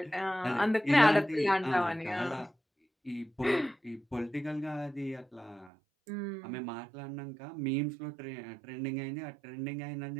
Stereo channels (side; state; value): left; drops out; at 5.7 s